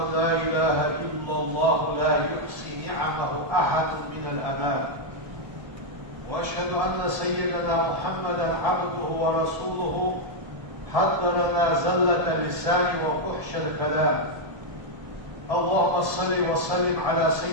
لا إله إلا الله لا يحصي نعمه أحد من الأنام، وأشهد أن سيدنا محمدا عبده ورسوله حد لنا زلة اللسان وفحش الكلام. اللهم صل وسلم على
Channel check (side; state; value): left; late; 1.7 ms